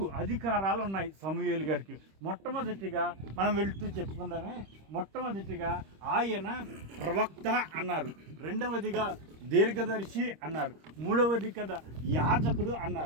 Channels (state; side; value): late; left; 26 ms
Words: అధికారాలు ఉన్నాయి. సమూయేలు గారికి మొట్టమొదటిగా మనం వెళ్తూ చెప్పుకుందామే. మొట్టమొదటిగా ఆయన ప్రవక్త అన్నారు, రెండవదిగా దీర్ఘదర్శి అన్నారు, మూడవది కదా యాజకుడు